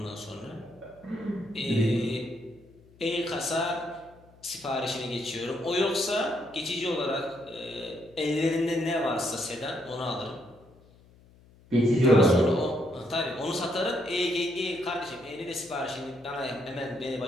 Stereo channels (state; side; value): noise; left; hum, 26 dB below the sound